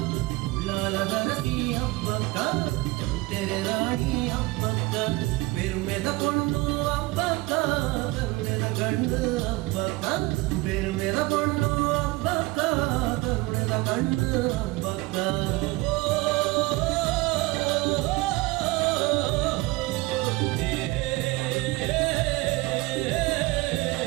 ಉಳ್ಳಾಲದರಸಿ ಹಬ್ಬಕ್ಕ ಚೌಟೆರೆ ರಾಣಿ ಹಬ್ಬಕ್ಕ ಬೆರುಮೆದ ಕೊಂಡು ಹಬ್ಬಕ್ಕ ಕರುಣೆದ ಗಂಡು ಹಬ್ಬಕ್ಕ ಬೆರುಮೆದ ಕೊಂಡು ಹಬ್ಬಕ್ಕ ಕರುಣೆದ ಗಂಡು ಹಬ್ಬಕ್ಕ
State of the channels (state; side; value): quieter; left; 21.4 dB